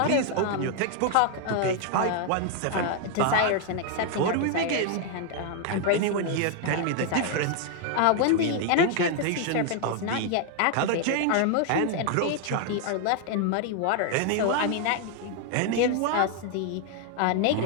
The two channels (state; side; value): different; both; correlation 0.00